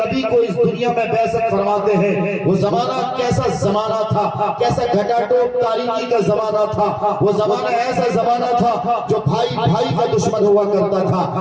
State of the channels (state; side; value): identical; both; correlation 1.00